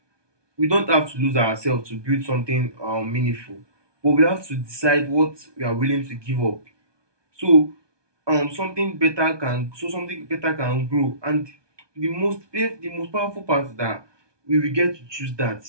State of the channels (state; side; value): late; left; 1.2 ms